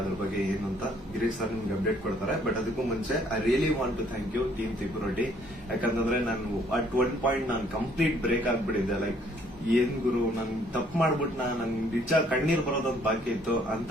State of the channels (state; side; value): normal; both; correlation 0.63